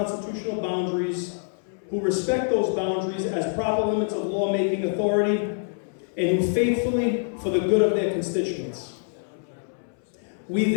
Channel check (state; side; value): silent; right; 61 dB below the other